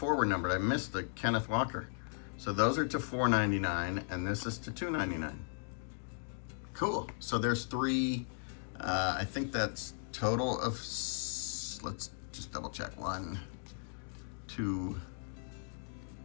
were numbered. I missed the Kenneth Walker. So those are to 499, and this is to 299. Cool. So there's 3. I think that's total of, let's just double check. 1, 2,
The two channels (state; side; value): silent; right; 53 dB below the other